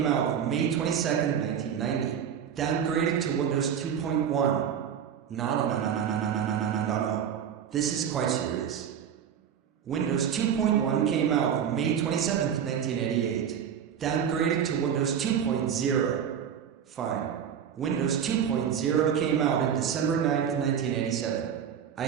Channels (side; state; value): left; quieter; 8.4 dB